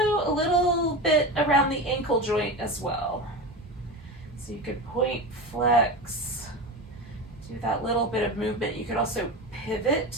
a little bit around the ankle joint as well. So you could point, flex, do that little bit of movement. You could also pivot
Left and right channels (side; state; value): both; normal; correlation 0.25